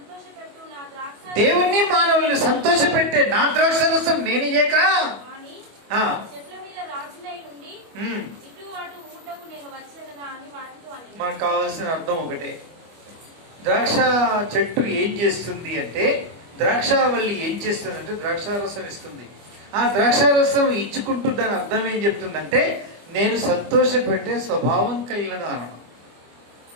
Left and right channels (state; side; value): late; left; 25 ms